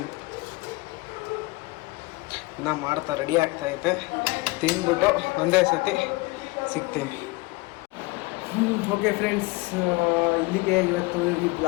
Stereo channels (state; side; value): quieter; right; 23.1 dB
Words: ಮಾಡ್ತಾ ರೆಡಿ ಆಗ್ತಾಯಿದೆ. ತಿಂದ್ಬಿಟ್ಟು ಒಂದೇ ಸತಿ ಸಿಗ್ತೀನಿ. ಓಕೆ ಫ್ರೆಂಡ್ಸ್, ಇಲ್ಲಿಗೆ ಇವತ್ತು ಈ